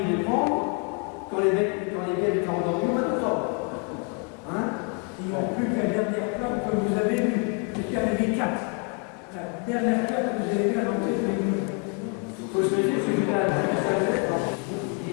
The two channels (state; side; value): quieter; right; 33.3 dB